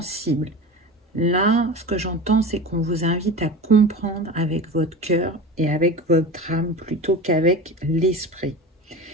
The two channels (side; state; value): both; normal; correlation 0.31